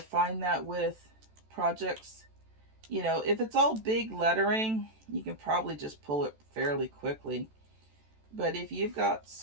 find that with projects, if it's all big lettering, you can probably just pull it fairly quickly. But if you've got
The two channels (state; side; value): late; left; 14 ms